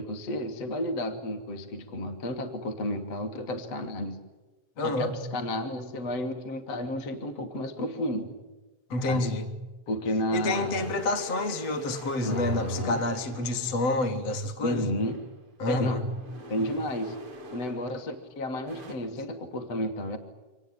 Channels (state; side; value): late; right; 7.9 ms